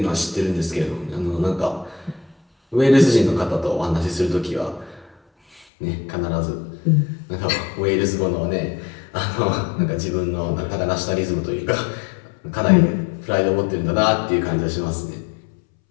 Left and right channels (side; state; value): right; drops out; at 5.7 s